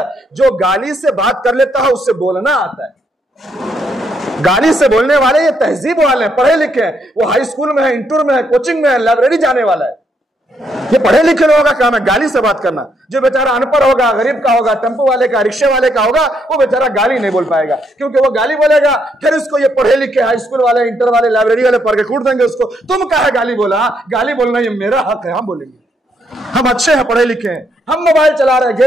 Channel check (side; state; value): both; normal; correlation 0.75